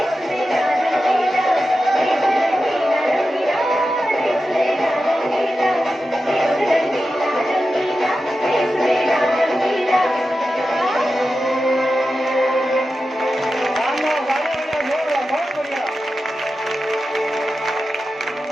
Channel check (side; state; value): both; normal; correlation 0.92